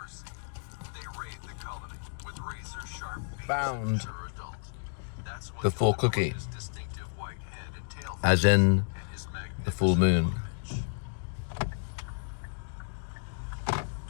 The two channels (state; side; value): silent; right; digital silence